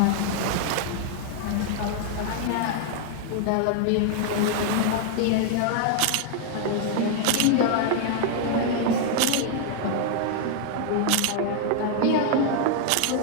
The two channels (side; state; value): both; different; correlation 0.00